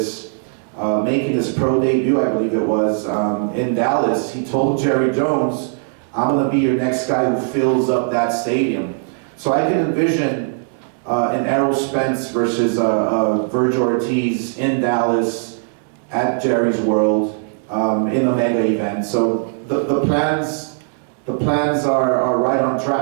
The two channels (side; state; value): left; silent; digital silence